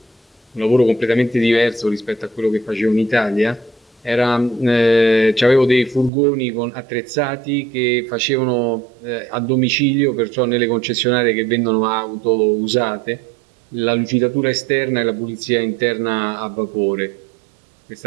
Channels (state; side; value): drops out; left; at 6.1 s